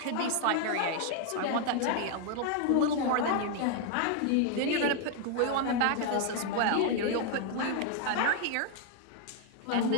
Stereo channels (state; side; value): different; both; correlation 0.00